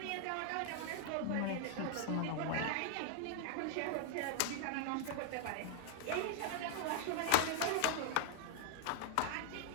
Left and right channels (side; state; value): both; different; correlation 0.00